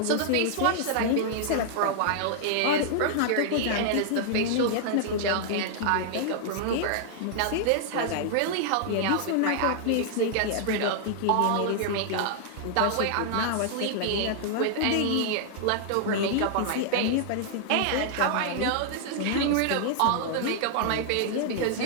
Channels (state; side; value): different; both; correlation -0.01